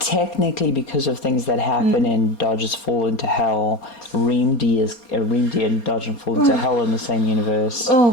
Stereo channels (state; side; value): late; right; 4.3 ms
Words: because of things that happen in Dodge's Fall into Hell, Reamd and Dodge and Fall into Hell in the same universe. Oh